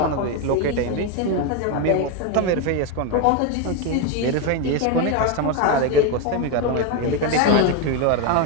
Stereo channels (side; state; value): both; different; correlation 0.02